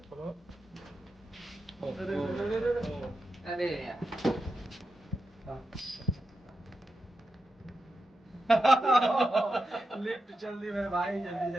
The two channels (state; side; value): normal; both; correlation 0.88